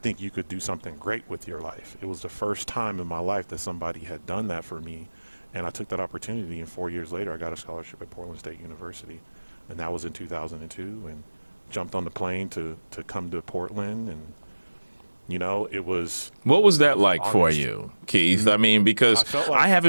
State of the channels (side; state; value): both; inverted; correlation -1.00